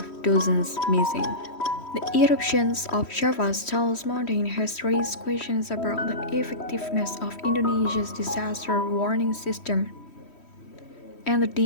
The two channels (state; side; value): late; right; 3.1 ms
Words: dozens missing. The eruptions of Java's tallest mountain has raised questions about the effectiveness of Indonesia's disaster warning system and the